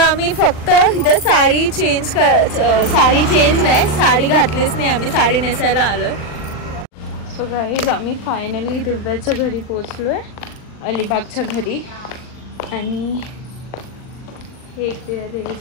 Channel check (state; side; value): late; right; 39 ms